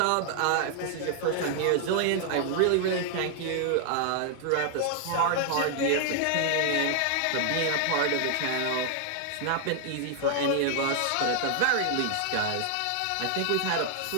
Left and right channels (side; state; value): both; different; correlation 0.00